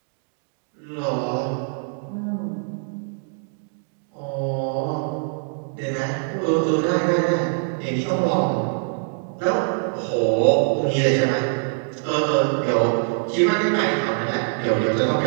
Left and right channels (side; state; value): left; silent; 61 dB below the other